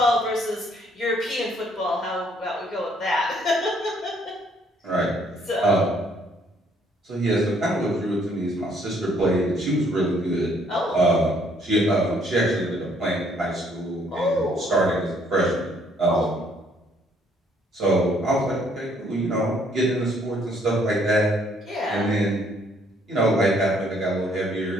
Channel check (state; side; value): normal; both; correlation 0.65